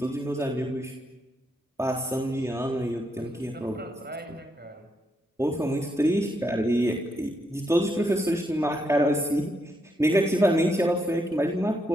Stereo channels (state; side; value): normal; both; correlation 0.79